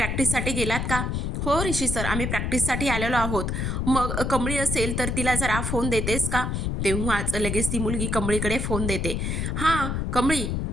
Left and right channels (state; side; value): noise; left; rumble, 1 dB below the sound